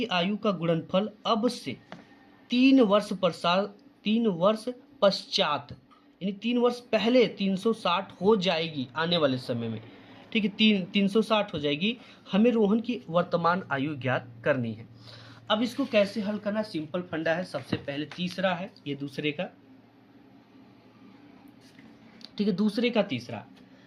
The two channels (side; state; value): both; identical; correlation 1.00